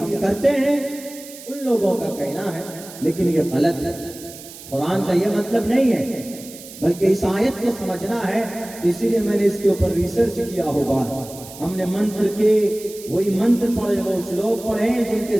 करते हैं, उन लोगों का कहना है, लेकिन ये गलत है। कुरान का ये मतलब नहीं है, बल्कि इस आयत को समझना है। इसीलिए मैंने इसके ऊपर रिसर्च किया होगा। हमने मंत्र के वही मंत्र पढ़े, वो श्लोक पढ़े जिनके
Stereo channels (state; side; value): noise; right; hiss, 16 dB below the sound